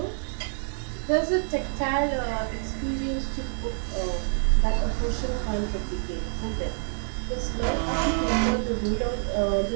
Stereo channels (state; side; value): silent; left; digital silence